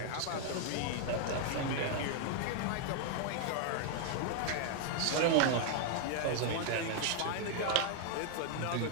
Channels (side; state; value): both; different; correlation 0.00